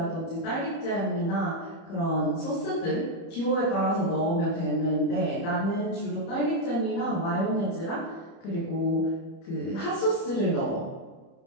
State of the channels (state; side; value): late; right; 30 ms